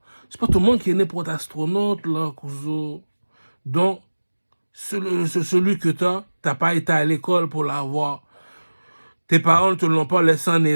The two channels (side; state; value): both; inverted; correlation -1.00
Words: C'est pas tout le monde qui est né pour être astronaute, là, cousin. Donc, celui que t'as pas été à l'école pour l'avoir. Tes parents ne te l'ont pas laissé en